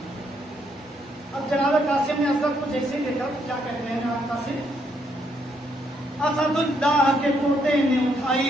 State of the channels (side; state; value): both; normal; correlation 0.74